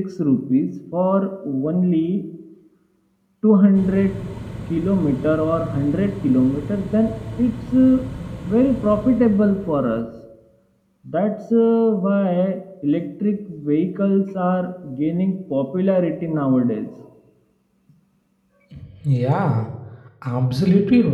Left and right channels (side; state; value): both; identical; correlation 1.00